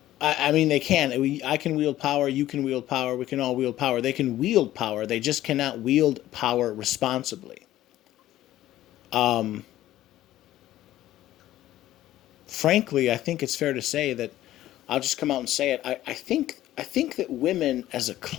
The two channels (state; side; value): quieter; right; 14.2 dB